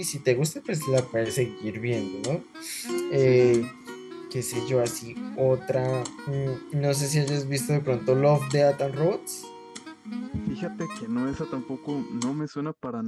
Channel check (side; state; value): both; identical; correlation 1.00